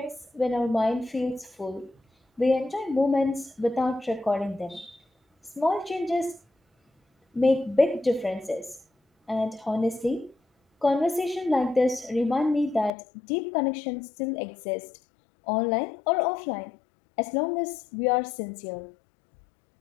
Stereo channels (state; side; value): drops out; right; at 12.9 s